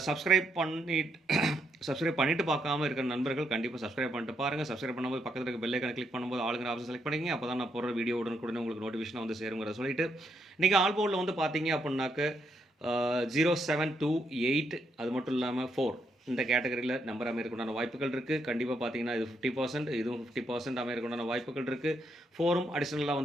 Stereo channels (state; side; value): normal; both; correlation 0.77